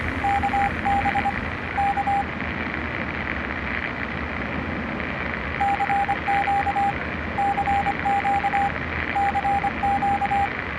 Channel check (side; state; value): both; identical; correlation 1.00